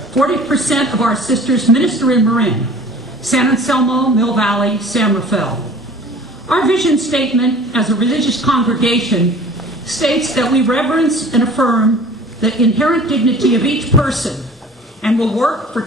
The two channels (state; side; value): normal; both; correlation 0.45